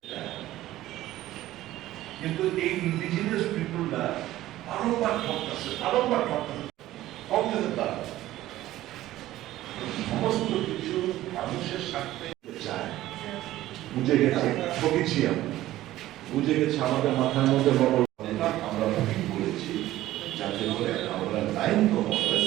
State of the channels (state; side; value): quieter; left; 15.0 dB